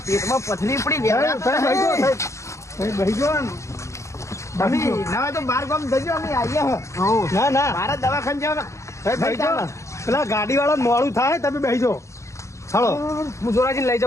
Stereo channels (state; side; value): late; right; 0.14 ms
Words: પેટમાં પથરી પડી ગયા. બેહજો તમે ના હોય તો બાર ગામ જજો અમે આવીએ હ ના ના મારા દવાખાને જવા બેહજો પેલા ગાડી વાળા મોડું થાય તમે બેહજો હાલો હું જોરાજી લઈ